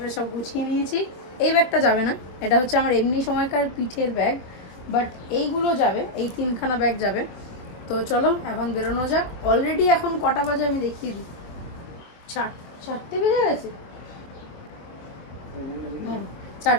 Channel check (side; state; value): right; late; 24 ms